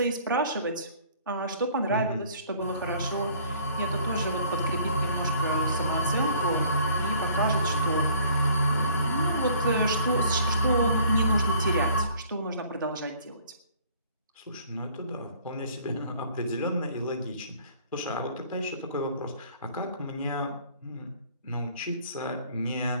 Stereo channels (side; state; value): both; inverted; correlation -0.56